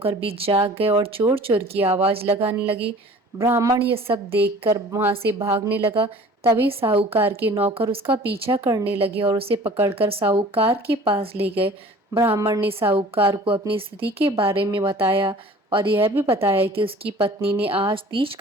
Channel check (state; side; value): normal; both; correlation 0.46